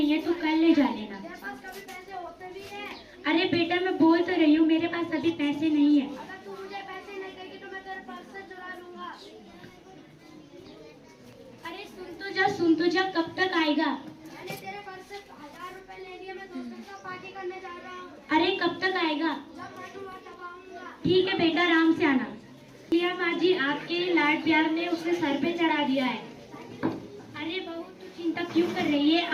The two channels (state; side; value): identical; both; correlation 1.00